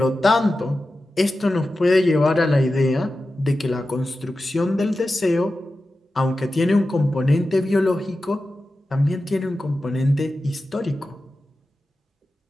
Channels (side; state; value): both; normal; correlation 0.93